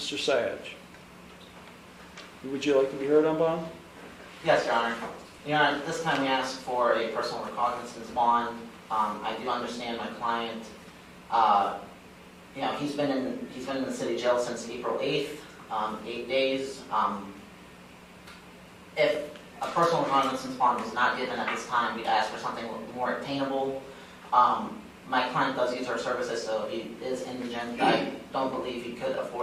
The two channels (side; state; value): both; identical; correlation 1.00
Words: Syed, would you like to be heard on bond? Yes, Your Honor. Your Honor, this time we asked for a personal recognizance bond. I do understand my client. He's been in the city jail since April 8th, 8 days. If a personal recognizance bond is not given at this time, we'd ask for something more attainable. My client does use our services, so he is indigent. I don't believe he could